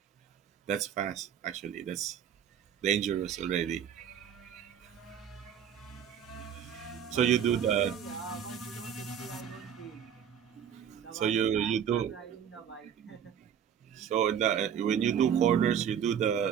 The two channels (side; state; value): left; quieter; 8.6 dB